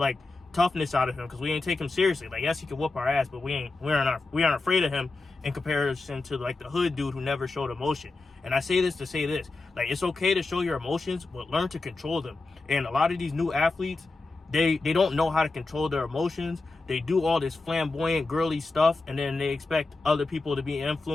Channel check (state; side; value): quieter; right; 3.5 dB